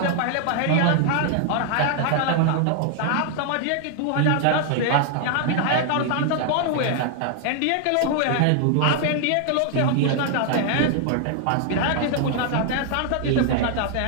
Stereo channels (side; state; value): both; different; correlation 0.00